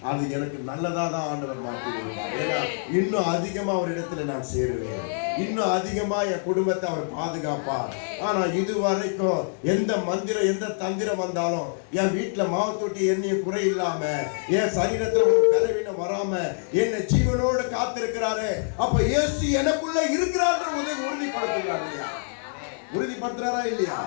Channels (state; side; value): silent; right; digital silence